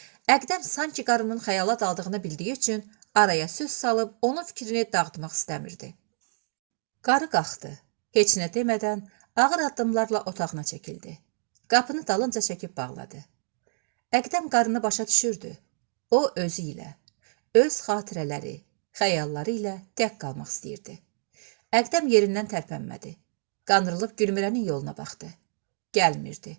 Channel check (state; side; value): silent; left; digital silence